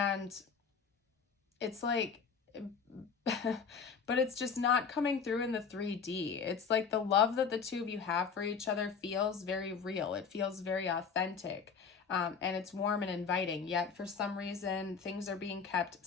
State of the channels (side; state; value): right; quieter; 6.0 dB